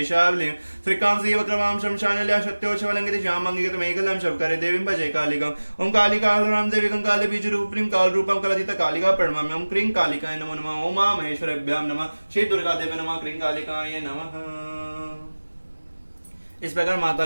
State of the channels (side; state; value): both; inverted; correlation -1.00